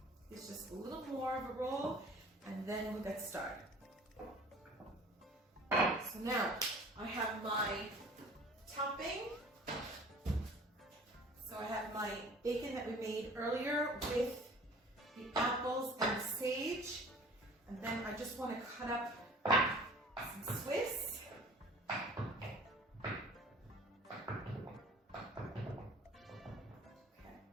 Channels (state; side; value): normal; both; correlation 0.47